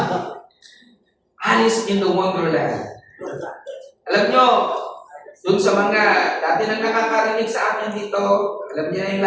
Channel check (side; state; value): both; identical; correlation 1.00